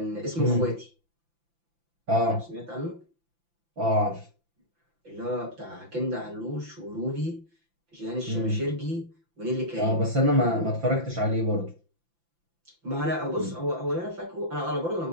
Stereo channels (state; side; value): late; left; 5.9 ms